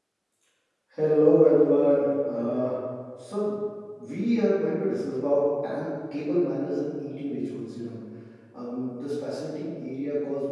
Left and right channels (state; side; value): identical; both; correlation 1.00